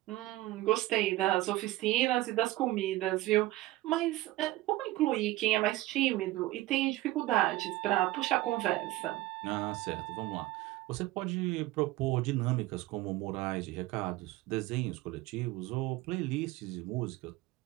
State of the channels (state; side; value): quieter; left; 17.4 dB